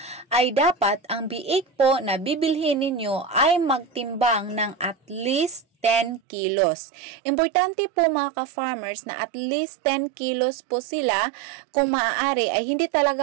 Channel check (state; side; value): drops out; left; at 6.2 s